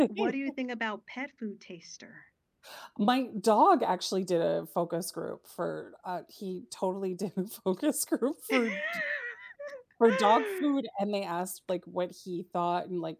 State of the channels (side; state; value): both; identical; correlation 1.00